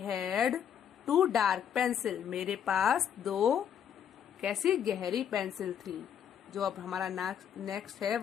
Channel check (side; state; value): right; quieter; 8.7 dB